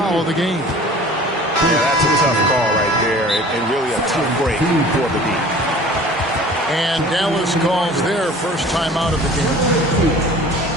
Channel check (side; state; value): both; normal; correlation 0.45